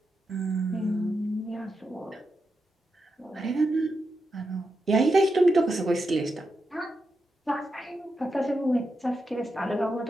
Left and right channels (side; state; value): both; normal; correlation 0.87